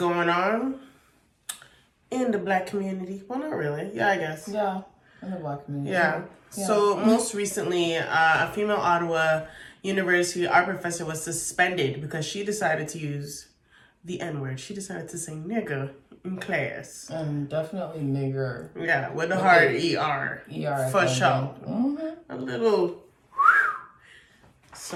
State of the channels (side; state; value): both; identical; correlation 1.00